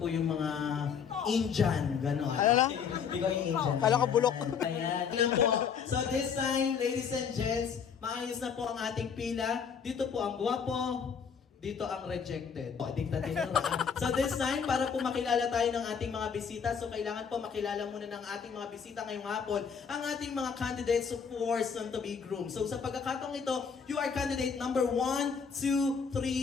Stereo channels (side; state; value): right; quieter; 6.6 dB